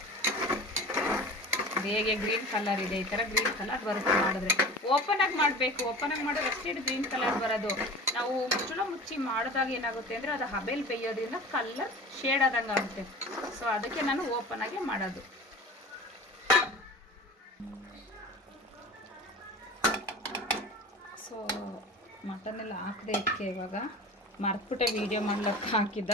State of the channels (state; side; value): normal; both; correlation 0.37